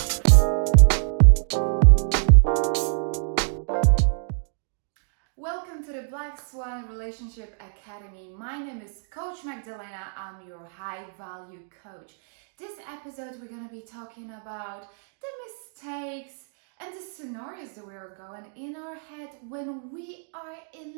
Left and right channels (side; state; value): left; silent; digital silence